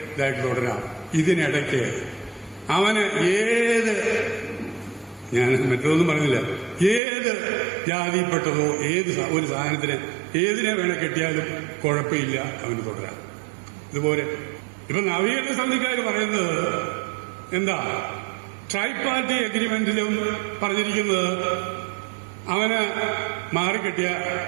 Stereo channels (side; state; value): left; drops out; at 7.0 s